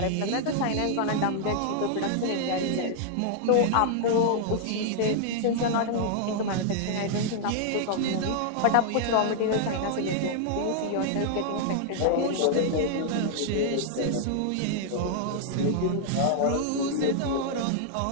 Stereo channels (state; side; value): different; both; correlation -0.01